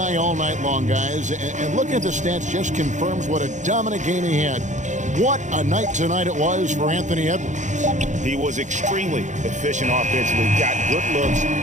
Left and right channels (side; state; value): left; late; 0.35 ms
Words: all night long, guys, and looking at the stats just confirms what a dominant game he had. What a night tonight it was for Anthony Edwards. He was extremely efficient offensively, got good looks,